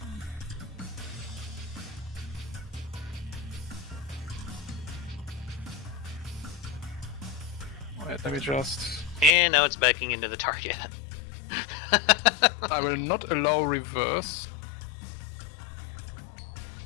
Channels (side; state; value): right; drops out; at 9.3 s